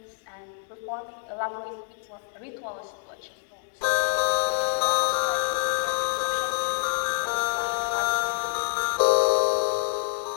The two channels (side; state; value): right; silent; digital silence